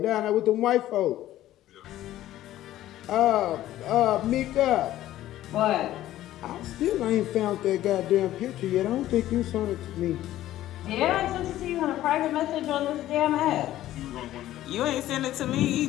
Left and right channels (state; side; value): quieter; right; 13.9 dB